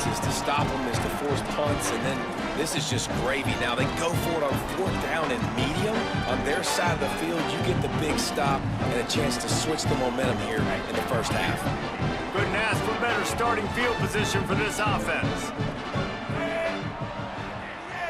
is to stop them, is to force punts, and then this is just gravy. Now they go for it on 4th down and medium. On their side of the field, you get the big stop and a chance to switch the momentum here in the first half. Couldn't ask for better starting field position for this offense.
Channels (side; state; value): both; identical; correlation 1.00